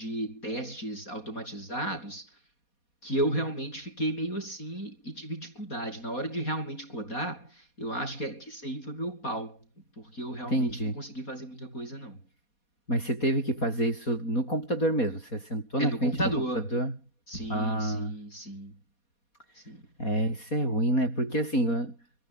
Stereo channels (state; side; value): late; right; 4.2 ms